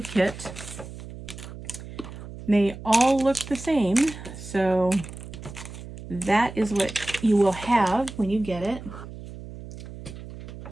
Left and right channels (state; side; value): noise; right; hum, 13 dB below the sound